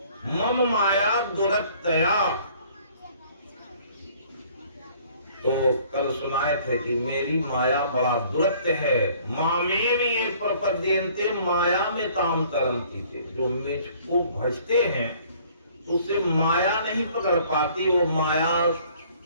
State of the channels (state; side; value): inverted; both; correlation -0.56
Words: मम माया दुरत्तया। तो कल सुनाए थे कि मेरी माया बड़ा दुरत्य है। मामे में ये प्रपद्यन्ते माया में ताम तरंती थे। जो मुझको भजते हैं उससे माया नहीं पकड़ पाती, वो माया